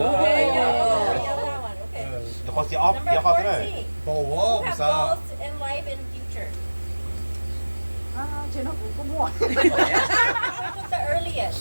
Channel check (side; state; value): both; inverted; correlation -1.00